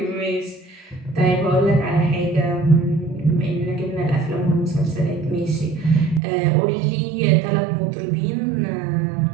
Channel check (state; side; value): drops out; left; at 6.2 s